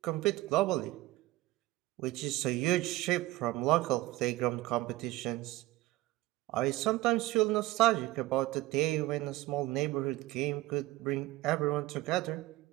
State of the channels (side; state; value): left; quieter; 17.9 dB